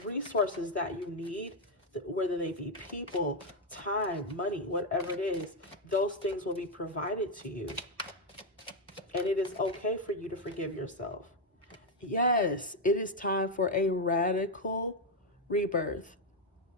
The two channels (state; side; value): normal; both; correlation 0.03